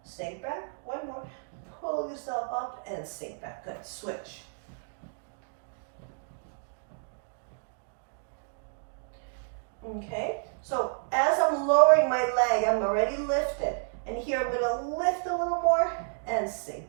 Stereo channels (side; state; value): left; silent; digital silence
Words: sink back. One more. Pull yourself up and sink back. Good. Switch. Okay. So as I'm lowering my leg, I'm already lifted. And here I'm going to lift a little more and